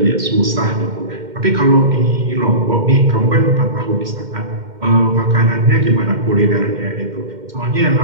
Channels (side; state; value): left; late; 2.1 ms